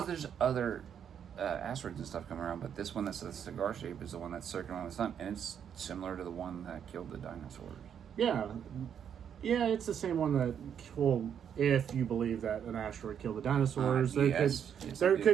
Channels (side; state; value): left; quieter; 8.4 dB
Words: there's other asteroids and stuff coming around, but this one that's a cigar shape is the one that's circling around the sun, and it's similar to the one that killed the dinosaurs. Yeah, it's the same one that, well, if you believe that an asteroid killed the dinosaurs, there